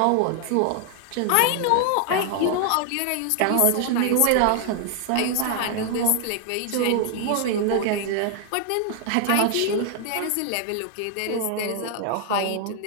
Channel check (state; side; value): different; both; correlation 0.00